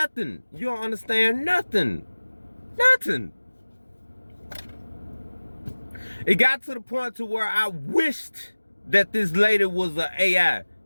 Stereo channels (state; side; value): inverted; both; correlation -1.00